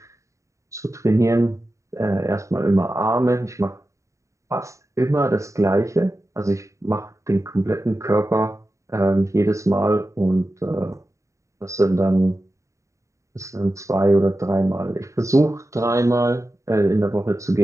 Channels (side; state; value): left; late; 0.15 ms